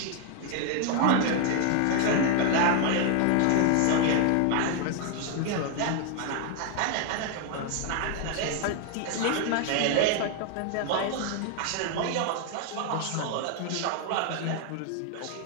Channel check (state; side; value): different; both; correlation 0.00